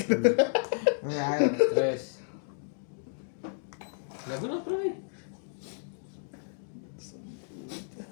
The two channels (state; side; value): silent; right; digital silence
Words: Right. Tres. Lago na, pre.